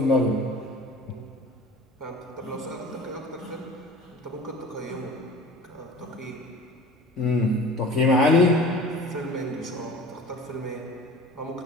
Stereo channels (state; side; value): normal; both; correlation 0.42